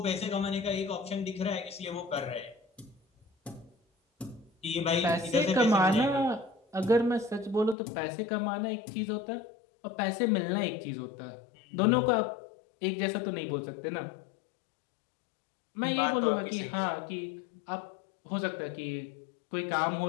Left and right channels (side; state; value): right; drops out; at 7.8 s